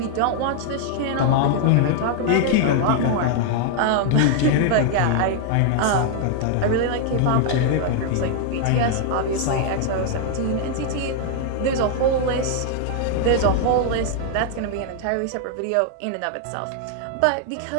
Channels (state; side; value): different; both; correlation 0.00